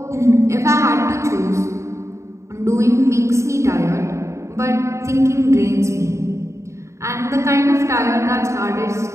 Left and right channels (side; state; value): left; late; 0.14 ms